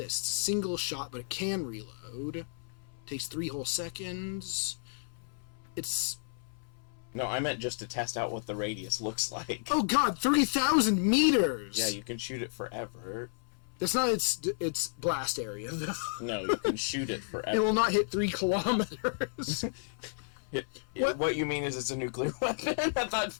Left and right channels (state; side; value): silent; right; 56 dB below the other